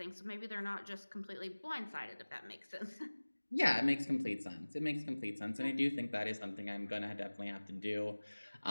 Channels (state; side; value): inverted; both; correlation -1.00